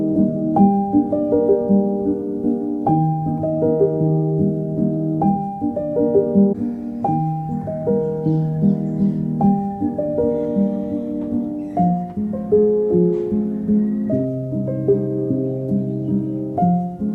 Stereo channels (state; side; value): identical; both; correlation 1.00